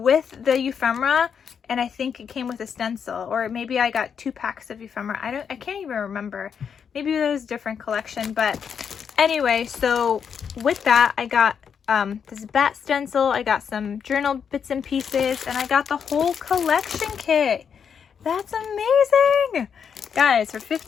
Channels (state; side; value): quieter; right; 7.1 dB